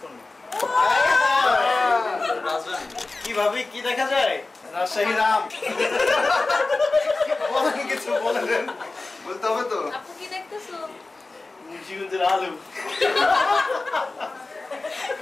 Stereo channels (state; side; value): quieter; right; 3.4 dB